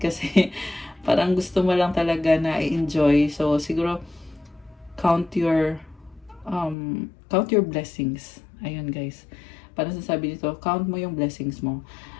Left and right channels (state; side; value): drops out; right; at 6.8 s